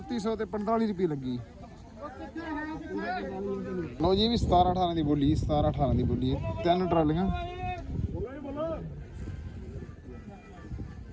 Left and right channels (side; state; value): both; identical; correlation 1.00